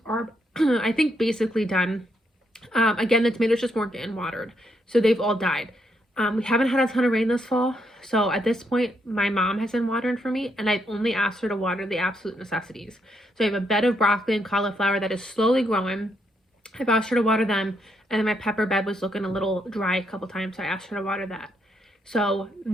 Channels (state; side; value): normal; both; correlation 0.77